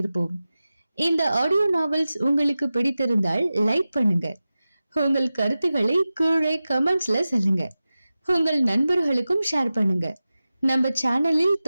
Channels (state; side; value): inverted; both; correlation -0.95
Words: இந்த ஆடியோ நாவல்ஸ் உங்களுக்கு பிடித்திருந்தால் லைக் பண்ணுங்க. உங்கள் கருத்துக்களை கீழே கமெண்ட்ஸ்ல சொல்லுங்க. உங்கள் நண்பர்களுக்கும் ஷேர் பண்ணுங்க. நம்ம சேனலில்